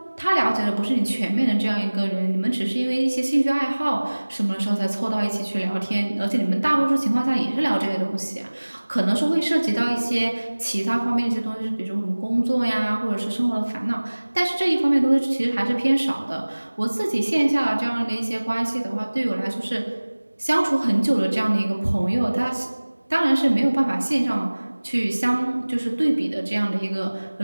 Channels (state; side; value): inverted; both; correlation -1.00